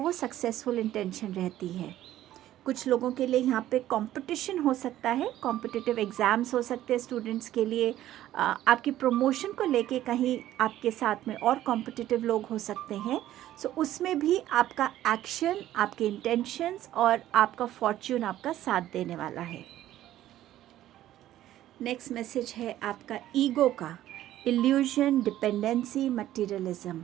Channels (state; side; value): quieter; left; 13.3 dB